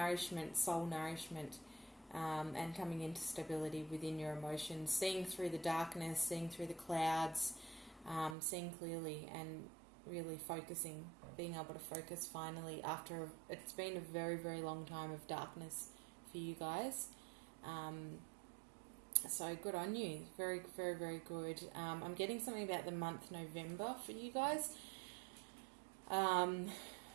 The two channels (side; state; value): left; drops out; at 8.3 s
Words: soul nourishment, and coming into stability within your emotions, seeing through the darkness, seeing through the clouds, seeing clearly, and really focusing, being able to focus finally after it's been a very, very long time of darkness for you guys. So good on you. Very, very, very good. I'm getting something about the month November for you guys.